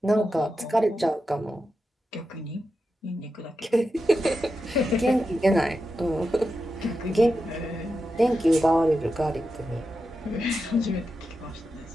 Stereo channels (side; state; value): both; normal; correlation 0.89